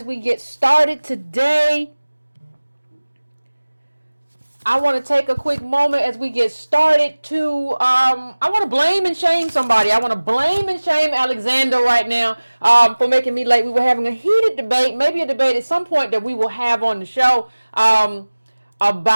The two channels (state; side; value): inverted; both; correlation -1.00